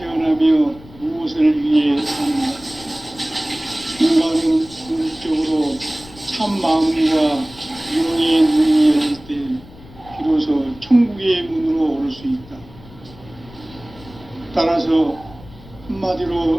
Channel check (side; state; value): left; noise; rumble, 20 dB below the sound